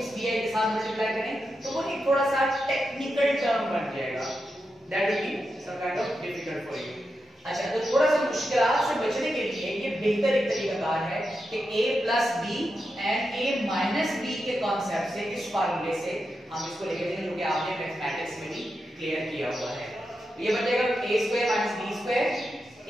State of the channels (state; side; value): normal; both; correlation 0.88